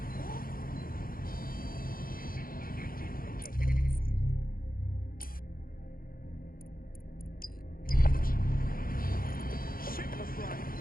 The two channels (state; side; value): late; right; 0.42 ms